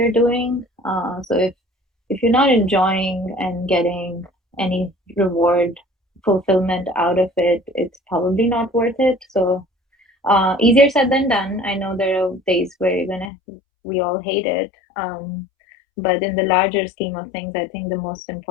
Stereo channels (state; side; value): drops out; right; at 13.3 s